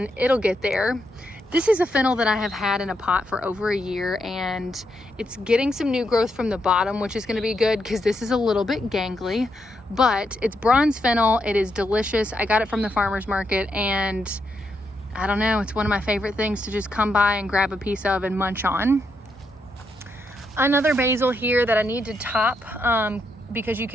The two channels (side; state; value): both; normal; correlation 0.81